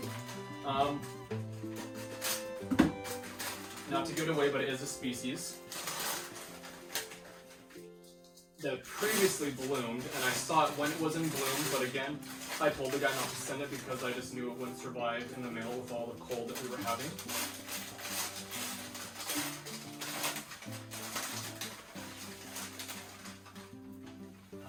Not to give it away, but it is a species that previously bloomed, and I saw it when it was in bloom, but again, I told the guy not to send it because I just knew it wouldn't survive in the mail with all the cold that we were having.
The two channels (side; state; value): both; identical; correlation 1.00